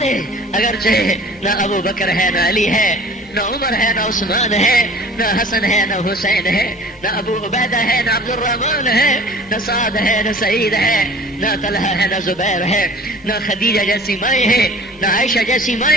دے، اگرچہ نہ ابو بکر ہے، نہ علی ہے، نہ عمر ہے، نہ عثمان ہے، نہ حسن ہے، نہ حسین ہے، نہ ابو عبیدہ ہے، نہ عبد الرحمن ہے، نہ سعد ہے، نہ سعید ہے، نہ طلحہ ہے، نہ زبیر ہے، نہ خدیجہ جیسی مائیں ہیں، نہ عائشہ جیسی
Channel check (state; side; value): normal; both; correlation 0.45